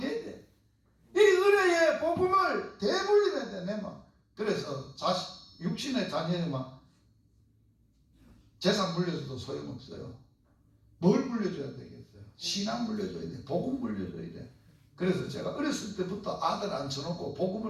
돼. 이 은혜의 복음을 대물림해야 돼, 내 맘. 그래서 육신의 자녀에만 재산 물려줘도 소용없어요. 뭘 물려줘야 되겠어요? 신앙 물려줘야 돼. 복음 물려줘야 돼. 그래서 제가 어렸을 때부터 아들 앉혀놓고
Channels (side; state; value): both; identical; correlation 1.00